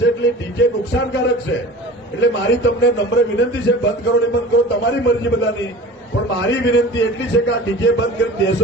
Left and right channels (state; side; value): normal; both; correlation 0.39